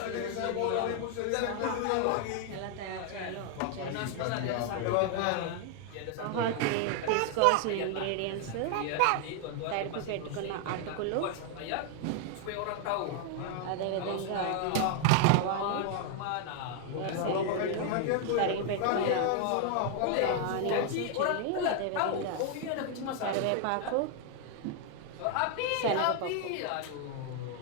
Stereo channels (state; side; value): different; both; correlation 0.00